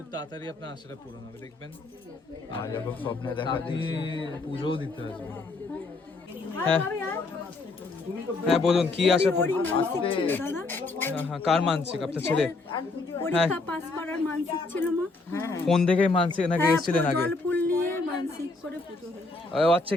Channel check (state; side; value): quieter; right; 3.5 dB